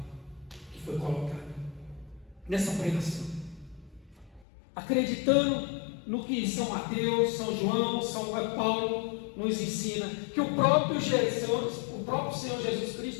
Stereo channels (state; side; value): drops out; right; at 4.5 s